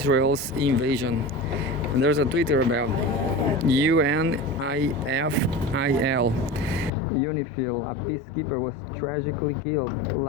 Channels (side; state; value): right; drops out; at 6.9 s